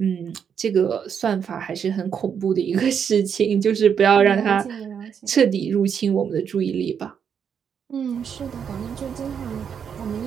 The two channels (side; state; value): left; quieter; 7.5 dB